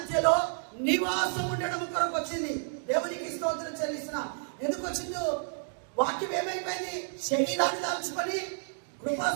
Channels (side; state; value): left; silent; digital silence